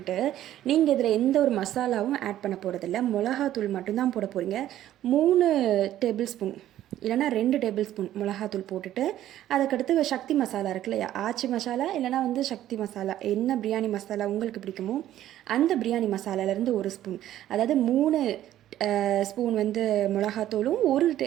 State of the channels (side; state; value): left; quieter; 12.7 dB